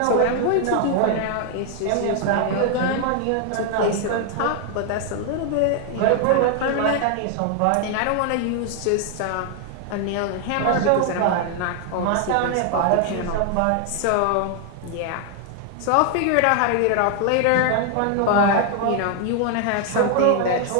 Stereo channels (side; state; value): both; different; correlation 0.00